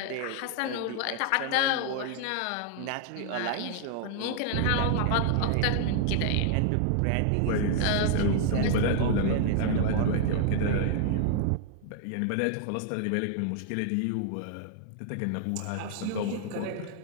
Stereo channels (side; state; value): both; different; correlation 0.00